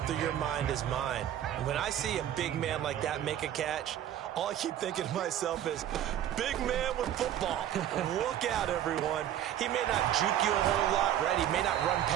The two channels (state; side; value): quieter; left; 11.2 dB